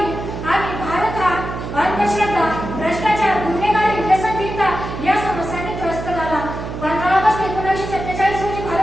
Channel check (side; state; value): right; noise; hum, 7 dB below the sound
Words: आणि भारत हा अंधश्रद्धा, भ्रष्टाचार, गुन्हेगारी, व्यसनहीनता या समस्यांनी त्रस्त झाला. 15 ऑगस्ट 1947 रोजी